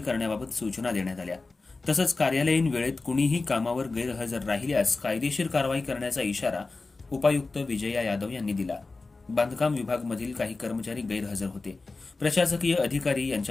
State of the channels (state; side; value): quieter; right; 3.7 dB